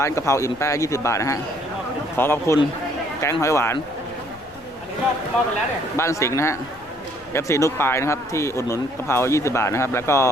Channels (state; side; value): noise; left; rumble, 24 dB below the sound